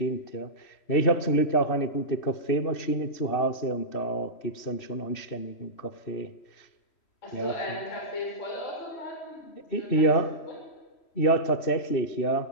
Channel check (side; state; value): right; late; 3.0 ms